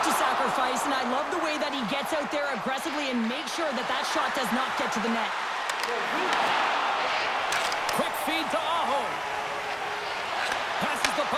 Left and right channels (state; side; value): identical; both; correlation 1.00